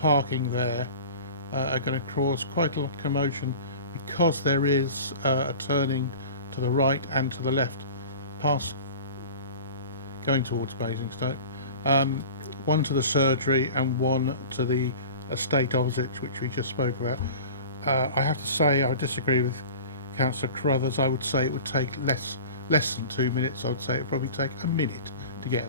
parking there are going to cause quite a lot of commotion, because there is a turning to the right and to the left past going towards Basingstoke, one to the surgery and one to the estate opposite, which we just spoke about. I have to say I disagree with Councillor Carruthers. I would say it would take less than 2 minutes. I would say it would probably take a minute to get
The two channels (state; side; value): inverted; both; correlation -0.38